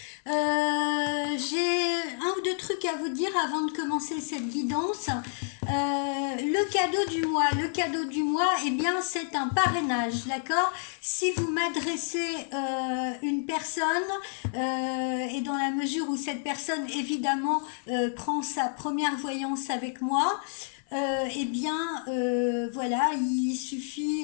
J'ai un ou deux trucs à vous dire avant de commencer cette guidance. Le cadeau du mois, eh bien c'est un parrainage, d'accord? Si vous m'adressez une personne et dans la mesure où cette personne évidemment prend sa première voyance avec moi, eh bien, voilà, il suffit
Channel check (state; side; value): silent; right; 59 dB below the other